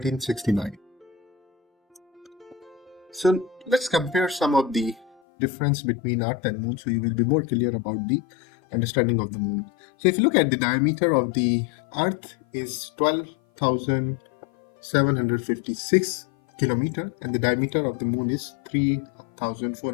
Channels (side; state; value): right; drops out; at 5.2 s